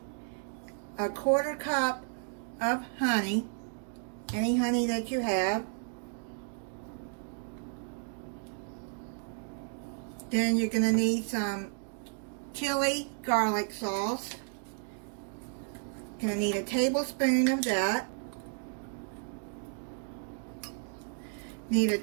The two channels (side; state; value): left; silent; 56 dB below the other